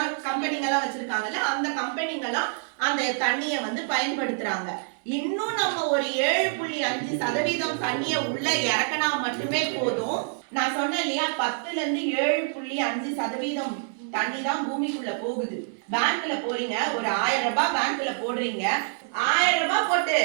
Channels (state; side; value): silent; left; 61 dB below the other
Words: வச்சிருக்காங்கல்ல, அந்த கம்பெனிங்கெல்லாம் அந்த தண்ணிய வந்து பயன்படுத்துறாங்க. இன்னும் நம்ம ஒரு 7.5% தண்ணிய உள்ள இறக்கினா மட்டுமே போதும். நான் சொன்னேன் இல்லையா, 10ல இருந்து 7.5% தண்ணி தான் பூமிக்குள்ள போகுது. பேங்க்ல போறீங்க, ஒரு 1000 ரூபாய் பேங்க்ல போடுறீங்க, 1000 ரூபாய் போட்டு